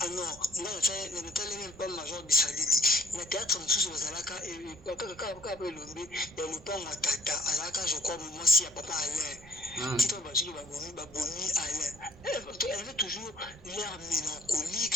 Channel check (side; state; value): right; noise; rumble, 21 dB below the sound